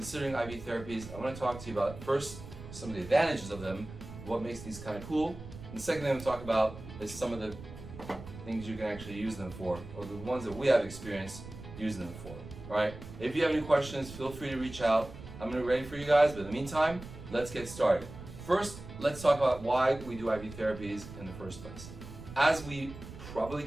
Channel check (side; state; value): right; noise; rumble, 13 dB below the sound